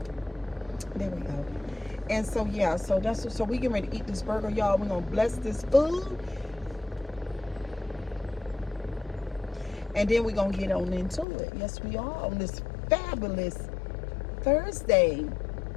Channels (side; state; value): right; drops out; at 11.2 s